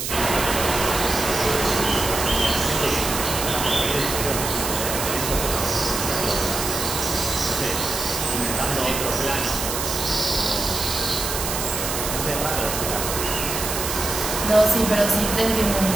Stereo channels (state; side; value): noise; right; hiss, 3 dB below the sound